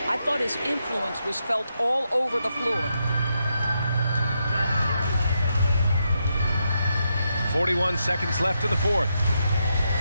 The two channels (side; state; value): both; inverted; correlation -0.83